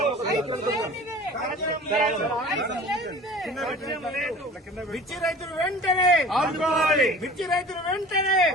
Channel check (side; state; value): both; normal; correlation 0.42